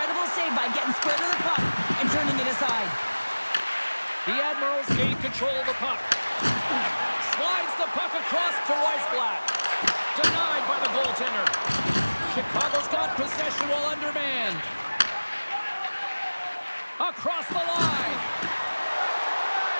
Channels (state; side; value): inverted; both; correlation -1.00